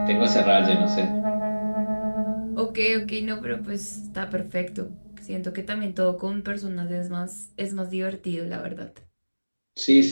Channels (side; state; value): both; inverted; correlation -1.00